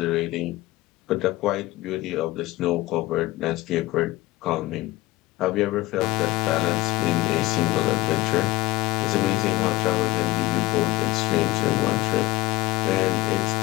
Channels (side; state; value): right; quieter; 18.6 dB